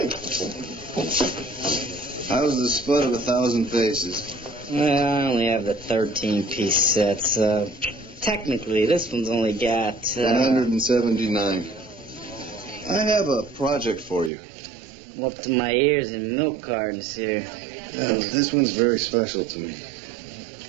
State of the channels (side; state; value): left; drops out; at 14.3 s